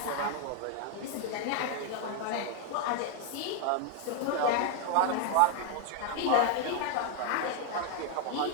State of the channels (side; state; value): both; different; correlation 0.01